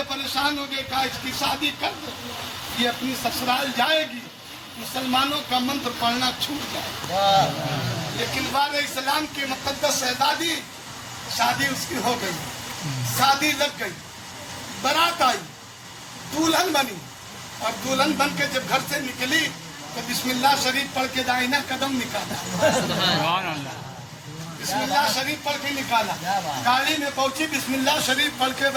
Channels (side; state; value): both; identical; correlation 1.00